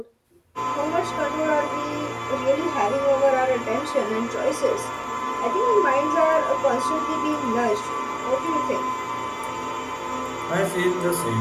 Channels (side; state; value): both; identical; correlation 1.00